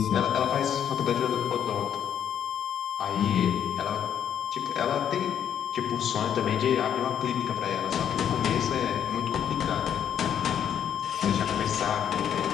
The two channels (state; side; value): quieter; right; 9.2 dB